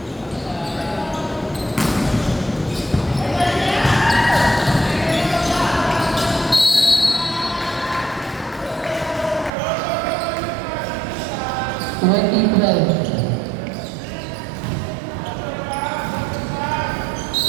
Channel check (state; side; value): drops out; left; at 9.5 s